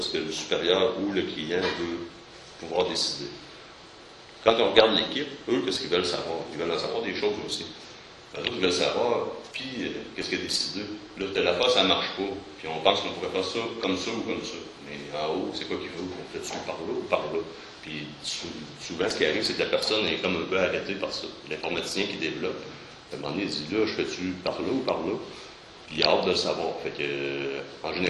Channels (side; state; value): both; identical; correlation 1.00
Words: que le supérieur ou le client veut pouvoir décider. Quand on regarde l'équipe, eux, qu'est-ce qu'ils veulent savoir? Ils veulent en savoir des choses aussi. Les autres, ils veulent savoir, puis qu'est-ce qu'il a décidé? Là, telle affaire, ça ne marche pas. Puis on pense qu'on pourrait faire ça ou comme ça. Mais en haut, c'est quoi qu'il veut? On fait-tu par là ou par là? Puis souvent, ce qui arrive, c'est que la personne est comme un peu arrêtée par ça. L'informaticien qui développe, à un moment donné, il dit, là, je fais-tu par là ou par là? Puis il a hâte de le savoir. Fait que, en